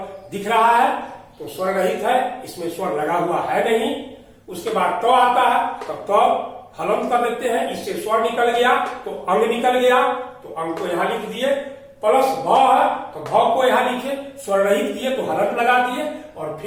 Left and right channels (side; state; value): both; identical; correlation 1.00